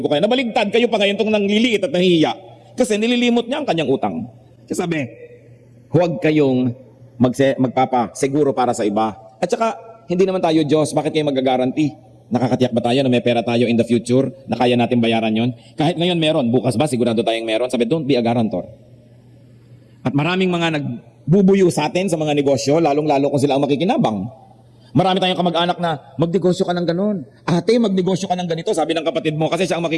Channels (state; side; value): identical; both; correlation 1.00